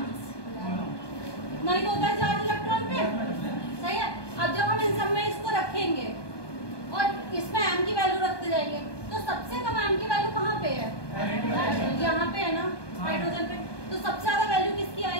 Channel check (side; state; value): right; late; 1.2 ms